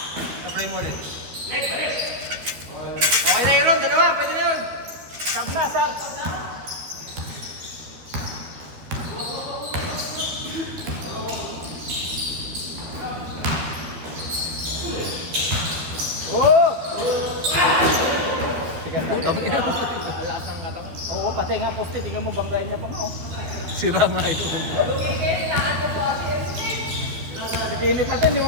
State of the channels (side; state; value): left; late; 13 ms